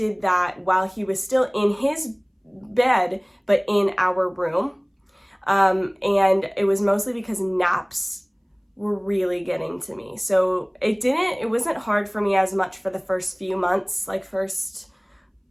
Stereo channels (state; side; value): identical; both; correlation 1.00